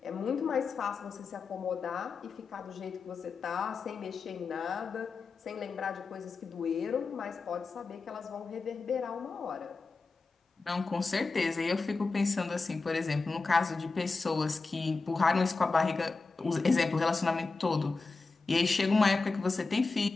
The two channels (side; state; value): right; quieter; 4.0 dB